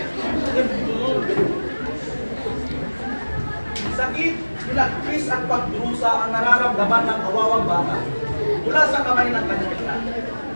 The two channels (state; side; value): inverted; both; correlation -1.00